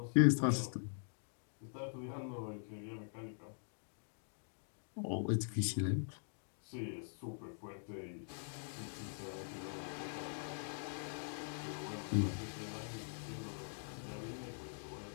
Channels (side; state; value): right; silent; digital silence